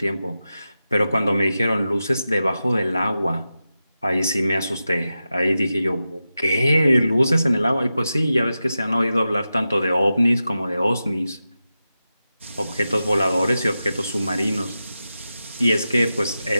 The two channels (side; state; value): both; inverted; correlation -0.91